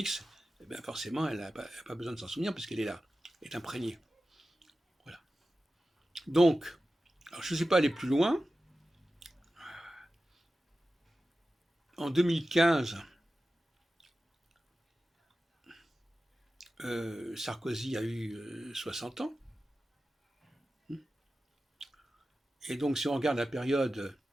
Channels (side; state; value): both; normal; correlation 0.94